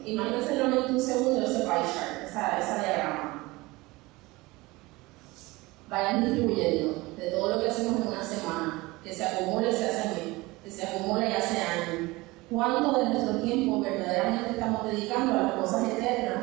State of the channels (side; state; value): left; quieter; 21.7 dB